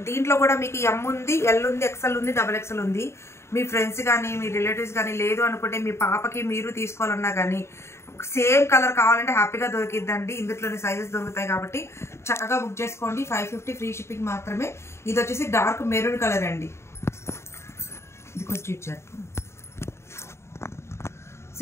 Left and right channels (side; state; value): right; late; 0.13 ms